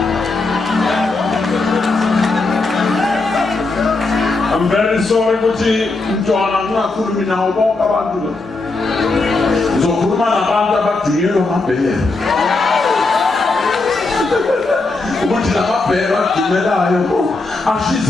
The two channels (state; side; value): quieter; right; 3.5 dB